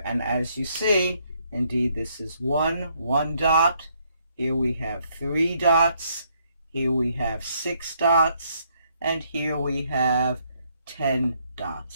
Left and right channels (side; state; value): both; inverted; correlation -0.71